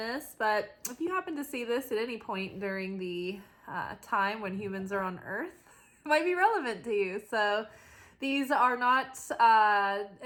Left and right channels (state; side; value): identical; both; correlation 1.00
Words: but if you happen to see this at any point during the time when humans are on Earth, it might be relevant to you. So these are not